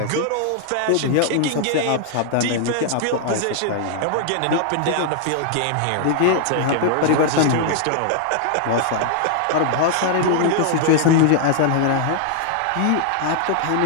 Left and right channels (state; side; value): different; both; correlation 0.00